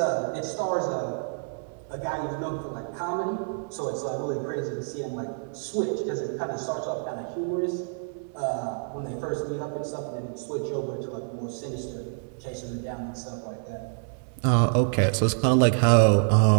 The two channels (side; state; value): left; silent; digital silence